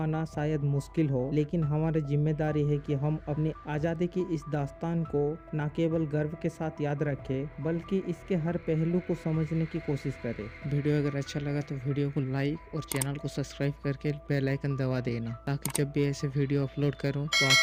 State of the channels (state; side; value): identical; both; correlation 1.00